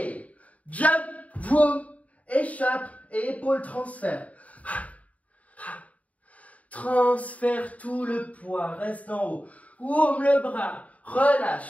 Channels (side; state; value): right; late; 0.069 ms